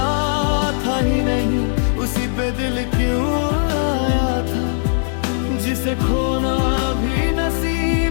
था ही नहीं उसी पे दिल क्यों आया था, जिसे खोना भी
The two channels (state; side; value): silent; right; digital silence